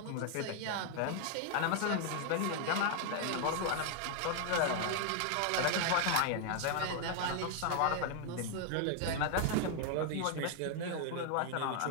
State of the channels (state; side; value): different; both; correlation 0.00